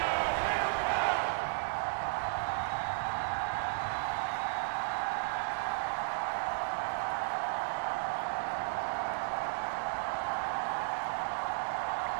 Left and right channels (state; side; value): silent; left; digital silence